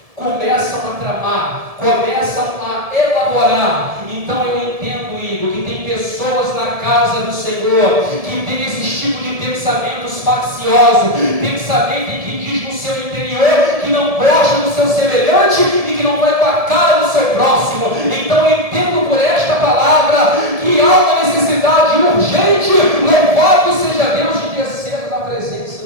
Começam a tramar, começam a elaborar. Então eu entendo, Igor, que tem pessoas na casa do Senhor que tem esse tipo de pensamentos facciosos, pensamento que diz no seu interior que não gosta do seu semelhante e que não vai com a cara do seu próximo. Então eu entendo por esta palavra que há uma necessidade urgente, louvado seja Deus, de descer na presença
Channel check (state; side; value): late; left; 1.7 ms